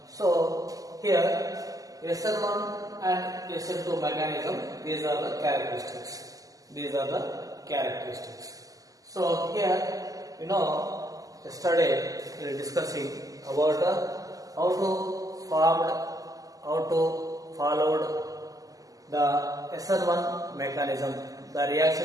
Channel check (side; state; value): left; late; 0.17 ms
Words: So here SN1 and SN2 mechanism, these are the characteristics. These are the characteristics. So here, yesterday we were discussing about how to followed the SN1 mechanism. The